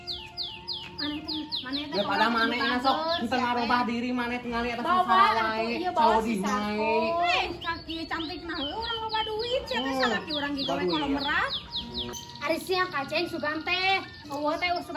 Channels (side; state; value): both; identical; correlation 1.00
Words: Maneh teh. Daripada maneh sok henteu ngarubah diri maneh tingali eta Bawa salah atuh, wae. iya bawa Cau si di Sarko. mae. Kaki cantik nah, urang loba duit. Siapa salaki urang gigawe kalau merah? Ari sia Kaceng sugan teh. Eueuh teh